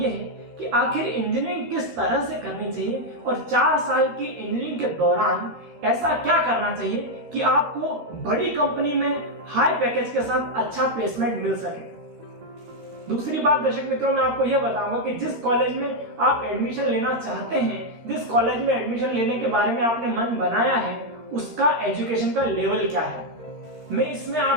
है कि आखिर इंजीनियरिंग किस तरह से करनी चाहिए और 4 साल की इंजीनियरिंग के दौरान ऐसा क्या करना चाहिए कि आपको बड़ी कंपनी में हाई पैकेज के साथ अच्छा प्लेसमेंट मिल सके। दूसरी बात दर्शक मित्रों, मैं आपको यह बताऊंगा कि जिस कॉलेज में आप एडमिशन लेना चाहते हैं, जिस कॉलेज में एडमिशन लेने के बारे में आपने मन बनाया है, उसका एजुकेशन का लेवल क्या है। मैं इसमें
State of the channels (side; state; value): left; late; 14 ms